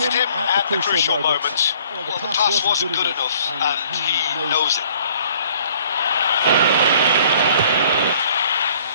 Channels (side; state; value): both; inverted; correlation -0.57